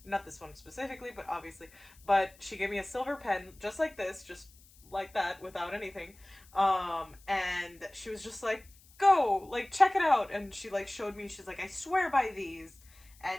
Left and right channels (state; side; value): noise; left; hiss, 26 dB below the sound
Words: not this one specifically, but obviously, but she gave me a silver pen just like this, just like that, without anything. And she was just like, go, like, check it out. And she like showed me, she's like, I swear by these.